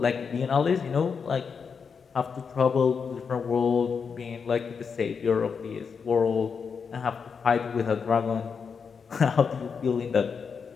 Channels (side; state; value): right; quieter; 6.0 dB